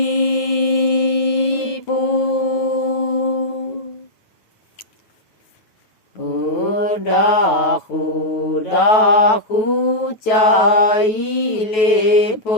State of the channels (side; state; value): right; late; 9.2 ms